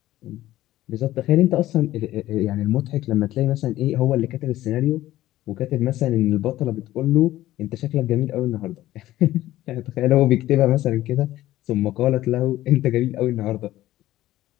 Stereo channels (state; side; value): quieter; right; 15.0 dB